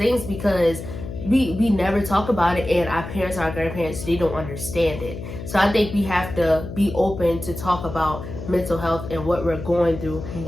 because we never talk about it, and our parents, our grandparents, they don't understand it. So I think we have to be open to talk about mental health and what we're going through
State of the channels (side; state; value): left; noise; hum, 9 dB below the sound